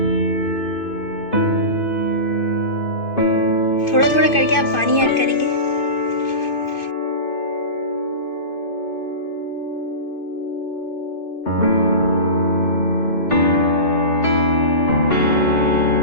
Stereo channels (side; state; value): right; late; 2.5 ms